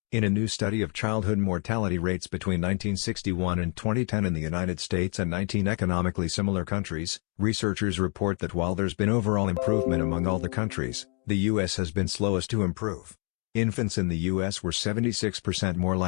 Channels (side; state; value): right; quieter; 36.5 dB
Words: In a new study of childhood mortality rates between 1961 and 2010 in the United States and 19 economically similar countries, researchers report that while there's been overall improvement among all the countries, the U.S. has been slowest to improve. Infants in the U.S. were 76% more